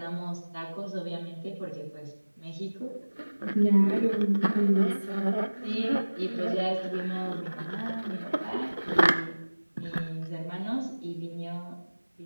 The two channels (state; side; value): inverted; both; correlation -1.00